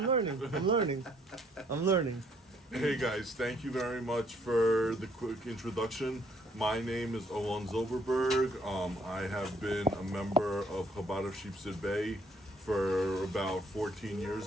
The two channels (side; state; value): both; normal; correlation 0.66